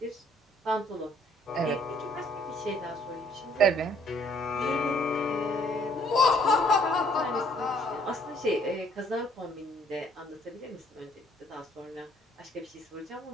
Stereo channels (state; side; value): normal; both; correlation 0.62